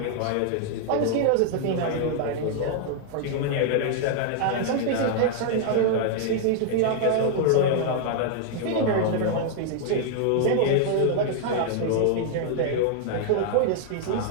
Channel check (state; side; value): different; both; correlation 0.00